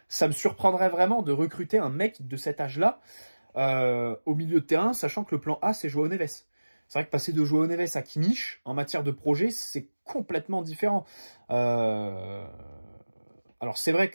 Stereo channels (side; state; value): both; inverted; correlation -1.00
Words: ça me surprendrait vraiment de recruter un mec de cet âge-là au milieu de terrain, sachant que le plan A, c'est João Neves. C'est vrai que passer de João Neves à Kimmich, en matière de projet, c'est complètement différent. Alors c'est vrai